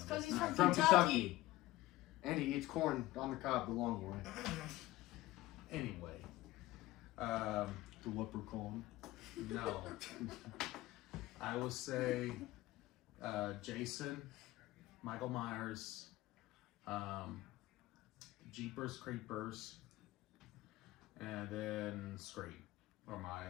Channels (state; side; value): quieter; right; 17.4 dB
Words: because he's From from Kentucky. And he eats corn on the cob the long way. Anyway, The leprechaun. no. I would say Jason, Michael Myers, Jeepers Creepers, and then Scream. Or my